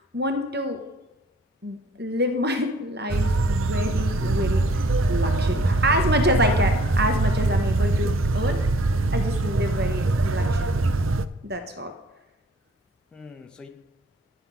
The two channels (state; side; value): normal; both; correlation 0.58